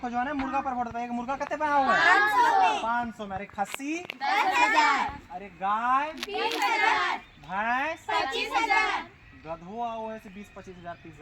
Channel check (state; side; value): identical; both; correlation 1.00